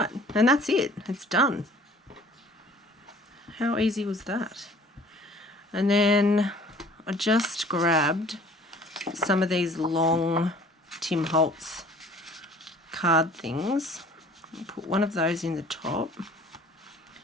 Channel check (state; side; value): normal; both; correlation 0.51